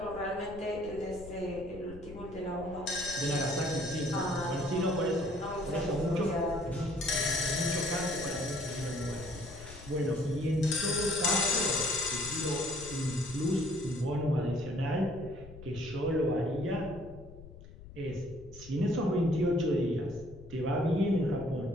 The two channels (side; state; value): left; noise; rumble, 16 dB below the sound